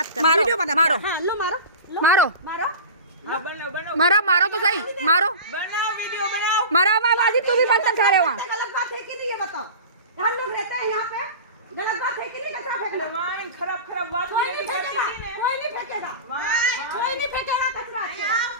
कर, मारो, वीडियो बना, मारो। हाँ लो मारो, लो, मारो मारो हाँ, बनाओ बनाओ मारो, मारो तो सही, मारो बनाओ, वीडियो बनाओ। मारो। बाजी तू भी बर्तन खा रहे हो वहाँ। गलत बात है कि नहीं ये बताओ, हम लोग रहते हैं यहाँ पे, गलत बात है कि नहीं कचरा फेंकना? वाइन खराब खराब बात कोई नहीं फेंकेगा, कोई नहीं फेंकेगा, कोई नहीं फेंकेगा कचरा।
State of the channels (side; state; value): both; inverted; correlation -0.32